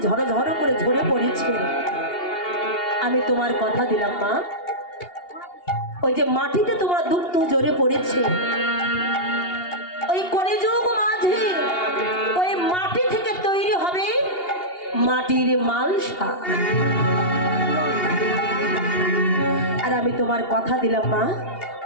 ঝড় ঝড় করে ঝরে পড়েছে, আমি তোমার কথা দিলাম মা, ওই যে মাটিতে তোমার দুগ্ধ ঝরে পড়েছে, ওই কলিযুগ মাঝে ওই মাটি থেকে তৈরি হবে মাটির মালসা। আর আমি তোমার কথা দিলাম মা,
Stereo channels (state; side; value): late; right; 2.8 ms